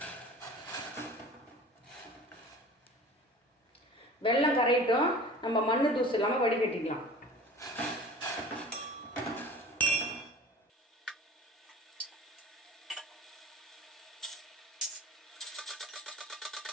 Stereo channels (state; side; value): normal; both; correlation 0.41